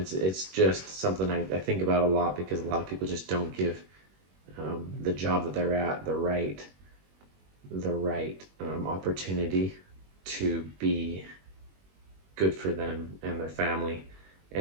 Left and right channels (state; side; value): late; left; 21 ms